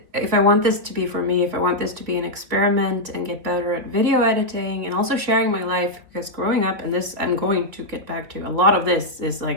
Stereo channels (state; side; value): late; left; 3.9 ms